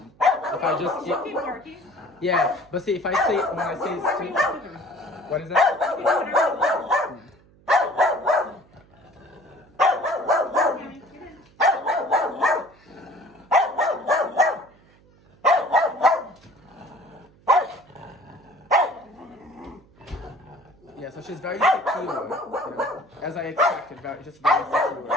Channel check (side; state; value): right; noise; hum, 29 dB below the sound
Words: If I just yeah, but see, if I say when I say sit, what is that? Yeah, so she's very secure, you know, as I expected, just very secure.